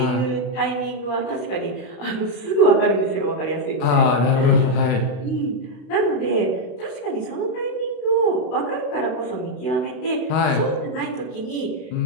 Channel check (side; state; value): right; late; 32 ms